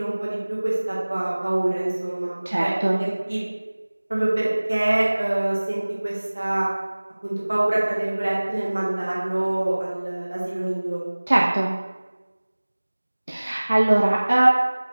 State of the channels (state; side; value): inverted; both; correlation -1.00